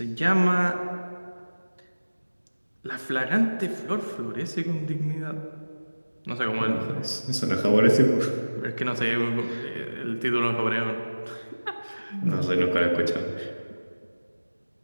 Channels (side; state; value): both; inverted; correlation -1.00